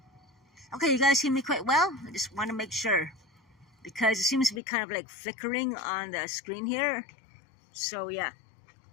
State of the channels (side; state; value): right; drops out; at 4.6 s